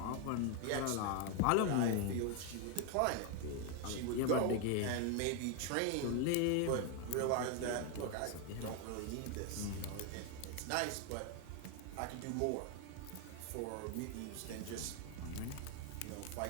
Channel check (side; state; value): both; different; correlation 0.01